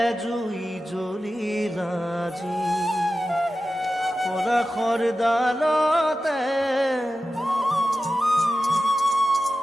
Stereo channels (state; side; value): normal; both; correlation 0.93